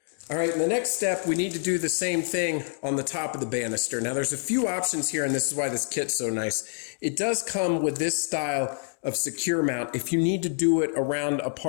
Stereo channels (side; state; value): right; silent; 57 dB below the other